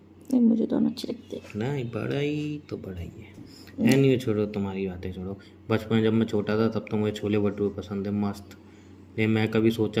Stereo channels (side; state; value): both; identical; correlation 1.00